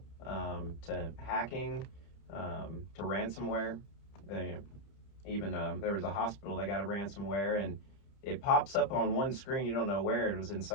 to hacking, to ransomware. Even there was a hospital that got a ransomware, and it pops up on one screen. You don't know where. It was in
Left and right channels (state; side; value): late; right; 30 ms